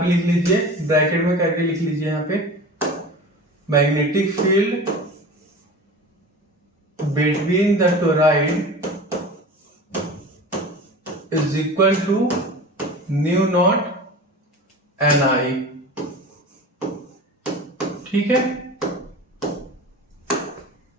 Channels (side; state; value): both; normal; correlation 0.35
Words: लिख लीजिए, ब्रैकेट में करके लिख लीजिए यहाँ पे magnetic field between the toroid is equal to new naught N I. ठीक है।